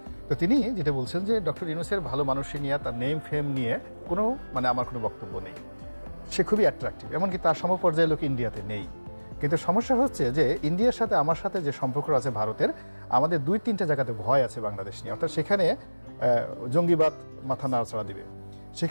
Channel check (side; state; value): both; inverted; correlation -1.00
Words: তো তিনি যেটা বলছেন যে ডক্টর ইউনূসের ভালো মানুষই নিয়ে, তার নেম ফেম নিয়ে কোনো আমার কোনো বক্তব্য নেই, সে খুবই অ্যাট্রাকটিভ, এমনকি তার সমপর্যায়ের লোক ইন্ডিয়াতে নেই। কিন্তু সমস্যা হচ্ছে যে ইন্ডিয়ার সাথে আমার সাথে যে সম্পর্ক আছে ভারতের, আমাদের 2-3টা জায়গাতে ভয় আছে বাংলাদেশ নিয়ে। অর্থাৎ সেখানে জঙ্গিবাদ মাথা নাড়াচাড়া দিবে,